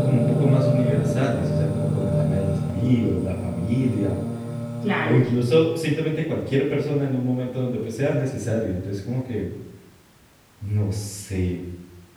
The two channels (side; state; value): both; identical; correlation 1.00